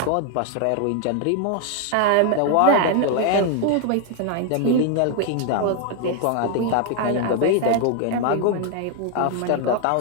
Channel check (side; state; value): both; different; correlation 0.00